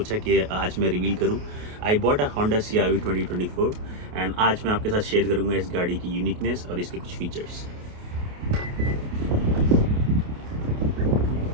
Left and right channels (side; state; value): left; late; 28 ms